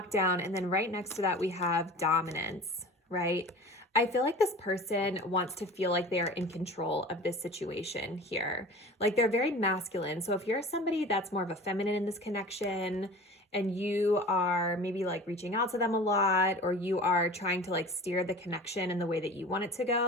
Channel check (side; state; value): both; normal; correlation 0.39